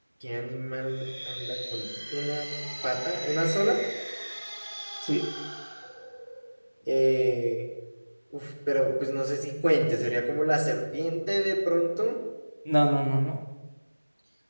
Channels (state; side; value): inverted; both; correlation -1.00